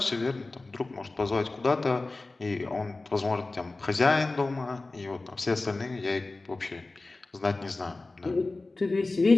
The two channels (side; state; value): right; quieter; 3.3 dB